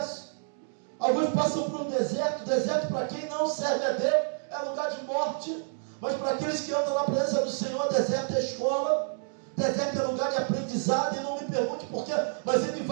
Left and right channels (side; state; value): left; silent; digital silence